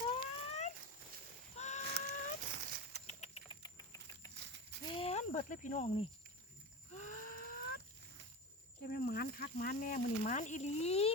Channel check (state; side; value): normal; both; correlation 0.26